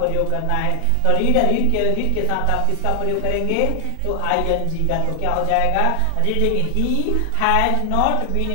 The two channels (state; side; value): different; both; correlation 0.00